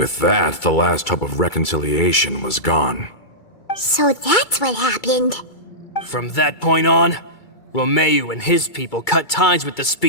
that, the last hope of reconciliation was gone. So that's what happened. From that point on, Romeu and his people cut ties with the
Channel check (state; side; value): late; right; 2.3 ms